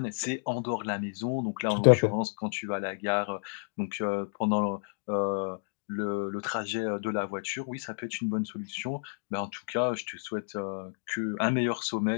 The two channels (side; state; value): right; silent; digital silence